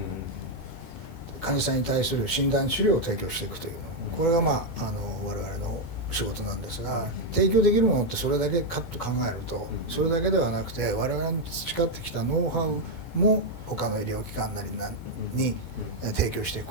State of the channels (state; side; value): late; left; 2.2 ms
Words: 患者さんに対する診断治療を提供していくというの、これが我々の仕事なんですが、提供できるものってそれだけかと考えると、それだけではなくて我々の培ってきたノウハウも他の医療機関なりに提供していく